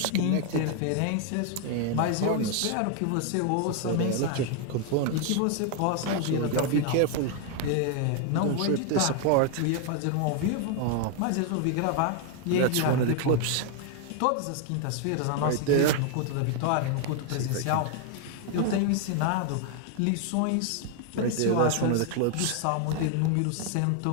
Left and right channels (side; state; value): both; different; correlation 0.00